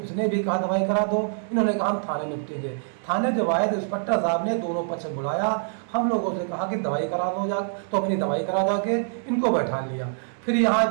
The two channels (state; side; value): silent; left; digital silence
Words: भी कहा दवाई करा दो। इन्होंने कहा हम थाने निपटेंगे। थाने जब आए तो इंस्पेक्टर साहब ने दोनों पक्ष बुलाया। हम लोगों से कहा कि दवाई करा दो जा, तो अपनी दवाई करा जाके इनको बैठा लिया। फिर यहाँ